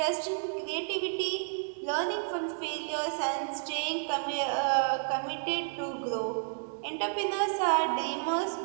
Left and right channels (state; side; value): silent; left; digital silence